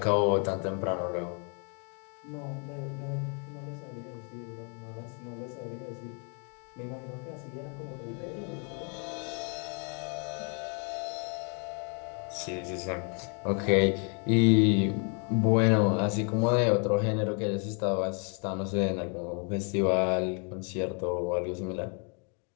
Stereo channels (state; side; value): quieter; right; 38.1 dB